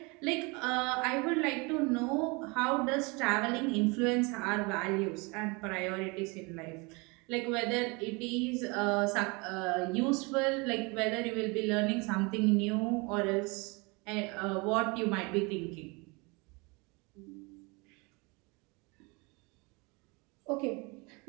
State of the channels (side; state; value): left; quieter; 28.1 dB